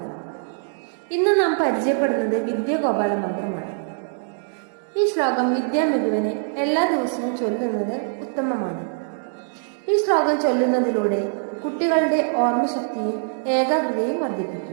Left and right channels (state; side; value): silent; left; digital silence